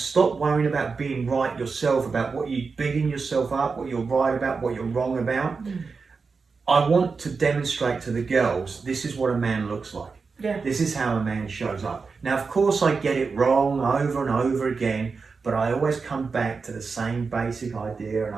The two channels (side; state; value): left; quieter; 4.8 dB